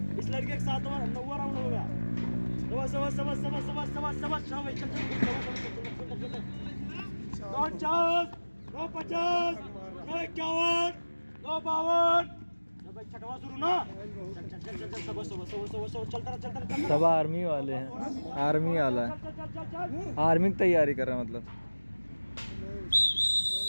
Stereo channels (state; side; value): inverted; both; correlation -1.00